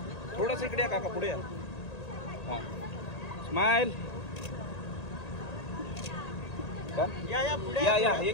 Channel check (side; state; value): right; late; 1.8 ms